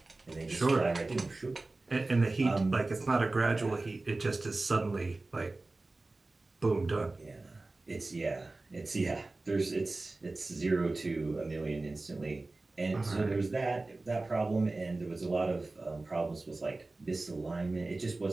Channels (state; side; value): quieter; left; 3.2 dB